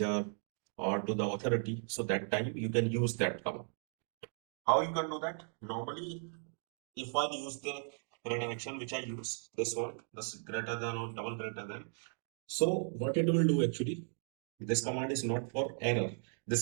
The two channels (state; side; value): silent; left; 53 dB below the other